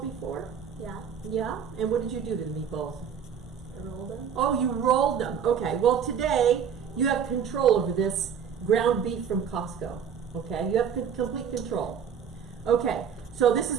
before? Yeah. Yeah? And what did you do to the meatballs? I rolled them. Oh, you rolled them. Okay, well today you have control over this ground beef from Costco. Okay, you have complete control. Okay, so this is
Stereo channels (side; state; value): left; quieter; 7.6 dB